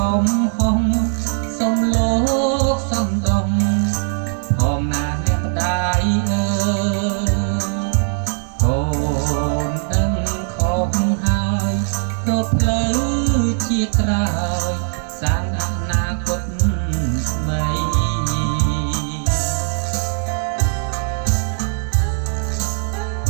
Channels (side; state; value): left; silent; digital silence